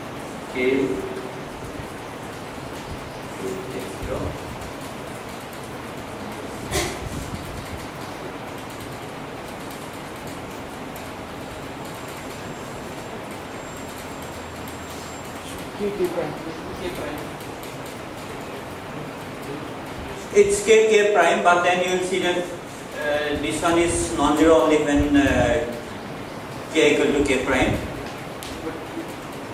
k x0 it's k prime, but then you will see that this one is non-zero only when k equal to k prime.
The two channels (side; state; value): both; identical; correlation 1.00